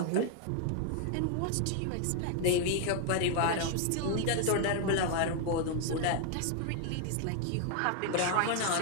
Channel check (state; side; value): different; both; correlation 0.00